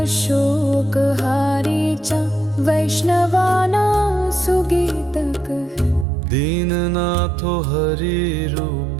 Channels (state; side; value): drops out; left; at 6.1 s